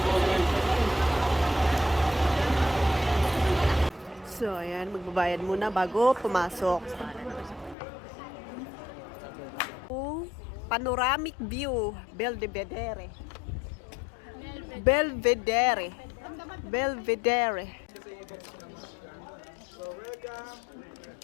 So, ayan, magbabayad muna bago pumasok. Panoramic view, Belvedere. Belvedere. Belvedere.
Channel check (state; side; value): drops out; right; at 7.8 s